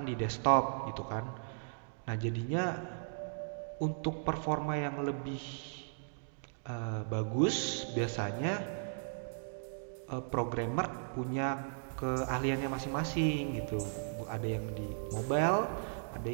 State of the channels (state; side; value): silent; left; digital silence